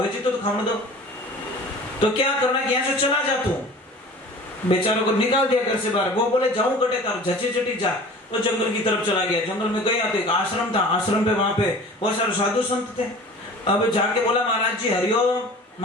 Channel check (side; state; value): both; normal; correlation 0.42